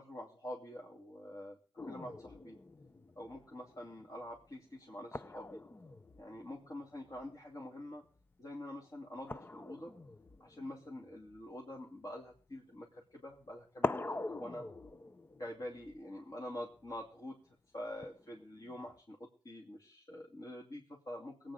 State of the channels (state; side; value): normal; both; correlation 0.85